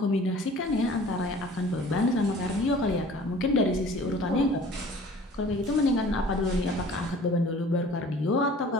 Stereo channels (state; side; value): normal; both; correlation 0.48